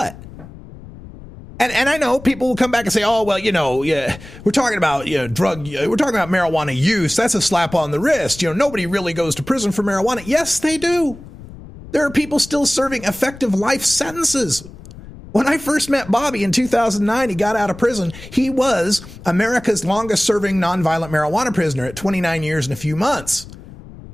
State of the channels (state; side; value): noise; left; rumble, 17 dB below the sound